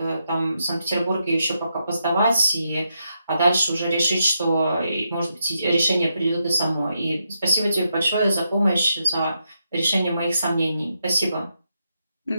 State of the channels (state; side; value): inverted; both; correlation -0.82